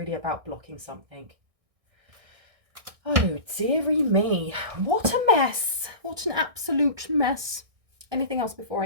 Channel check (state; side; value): late; left; 1.6 ms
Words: about blocking something. Oh, dearie me. What a mess. What an absolute mess. Anything else before